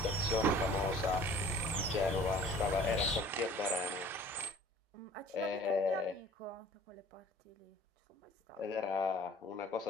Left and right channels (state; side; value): normal; both; correlation 0.50